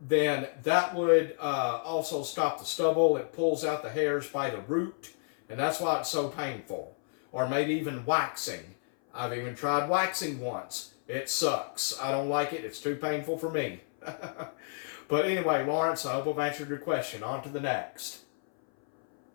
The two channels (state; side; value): silent; right; 57 dB below the other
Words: that would also stop the stubble. It pulls out the hairs by the root, and that's why it's so painful. Or maybe even waxing. I've even tried waxing once. It sucks. I don't like it. It's too painful for me. But anyway, Lawrence, I hope I've answered your question. On to the next.